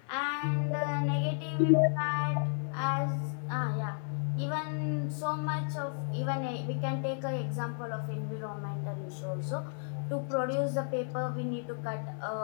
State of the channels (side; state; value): right; silent; 56 dB below the other